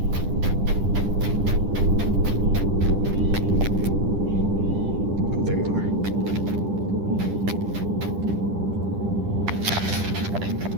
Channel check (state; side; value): late; left; 10 ms